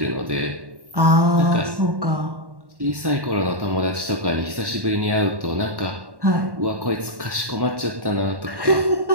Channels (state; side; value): late; left; 1.1 ms